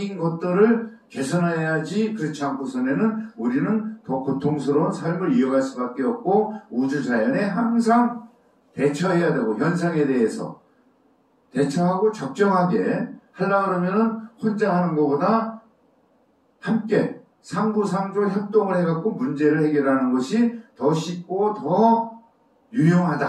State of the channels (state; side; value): identical; both; correlation 1.00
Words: 것들을 개선해야지 그렇지 않고서는 우리는 더 고통스러운 삶을 이어갈 수밖에 없고 우주자연에 항상 대처해야 되고 현상에 대해서 대처하고 적정하게 하려고 그러면은 혼자 하는 것보다 함께 상부상조 협동을 해갖고 문제를 해결하는 것이 더 쉽고 더